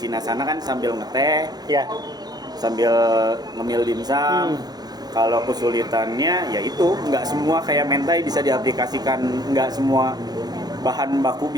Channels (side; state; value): left; late; 0.19 ms